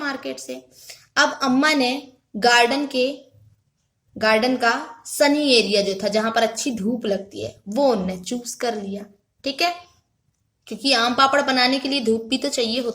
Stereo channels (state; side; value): identical; both; correlation 1.00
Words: से. अब अम्मा ने गार्डन का सनी एरिया जो था जहां पर अच्छी धूप लगती है वो उनने चूज कर लिया. ठीक है. क्योंकि आम पापड़ बनाने के लिए धूप भी तो चाहिए